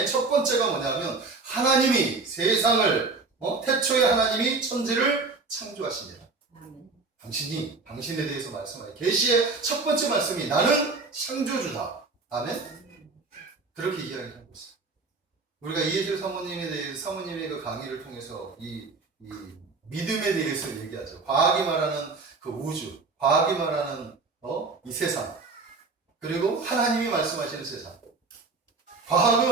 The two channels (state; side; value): quieter; left; 4.0 dB